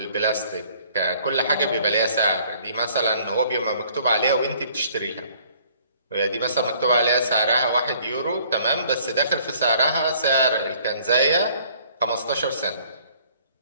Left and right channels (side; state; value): both; inverted; correlation -0.58